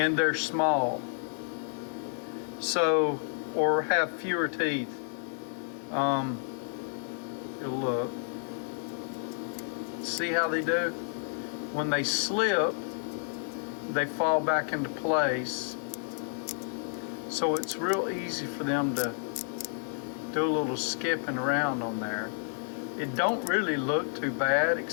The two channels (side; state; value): right; silent; digital silence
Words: they're small. So, or have fewer teeth. You'll look. See how they do? When they slip, they fall back into place. So it's real easy for them to do a little skipping around on there. It don't really look too bad,